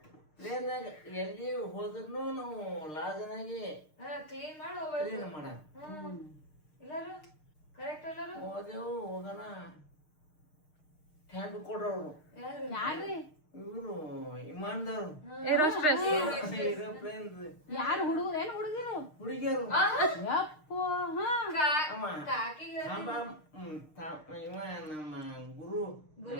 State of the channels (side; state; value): right; late; 6.6 ms